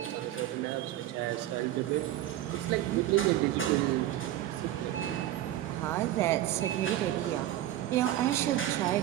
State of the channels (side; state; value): left; quieter; 13.5 dB